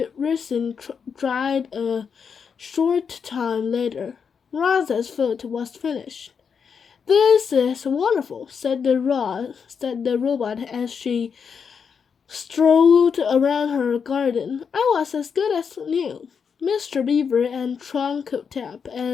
resin dried a short time later. Rosa's foot was finished. "This is wonderful," said the robot as she strolled around her garden. "I was as good as new." Mr. Beaver and Trunk Tap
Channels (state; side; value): quieter; right; 6.4 dB